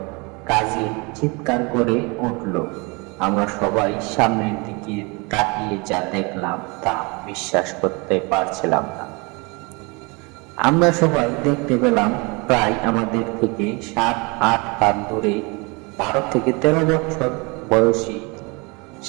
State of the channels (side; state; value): left; quieter; 28.7 dB